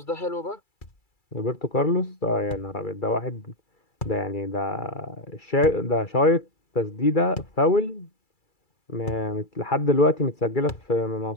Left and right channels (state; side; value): late; right; 2.3 ms